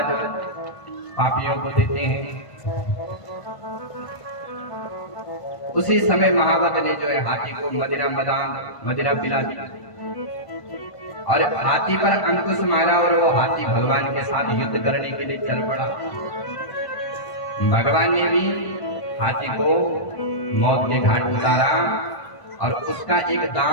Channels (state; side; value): late; right; 1.5 ms